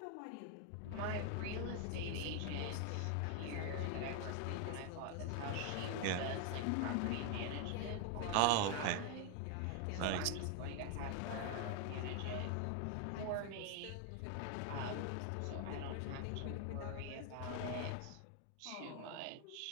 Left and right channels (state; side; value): different; both; correlation 0.00